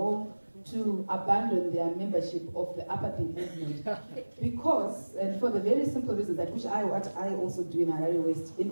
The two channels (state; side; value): inverted; both; correlation -1.00